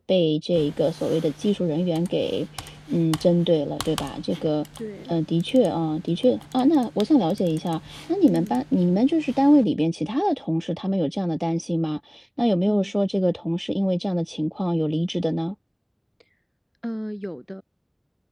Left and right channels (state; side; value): identical; both; correlation 1.00